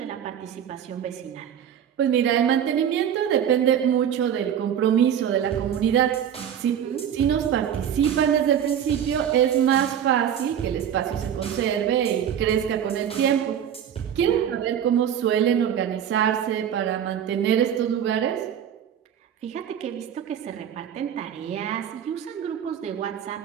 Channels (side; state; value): left; quieter; 9.2 dB